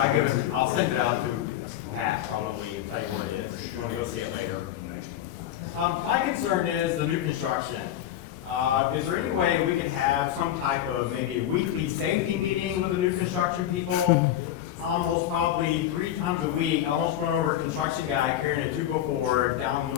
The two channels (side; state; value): right; quieter; 11.8 dB